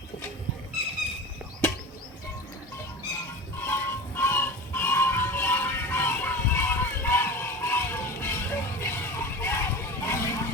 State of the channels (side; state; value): both; normal; correlation 0.31